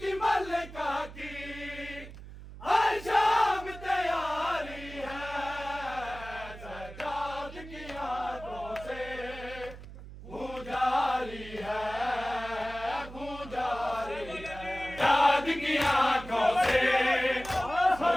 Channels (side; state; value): right; noise; hum, 14 dB below the sound